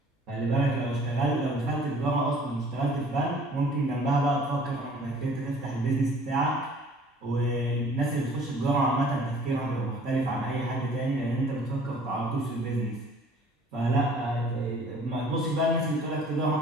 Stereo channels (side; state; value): both; normal; correlation 0.53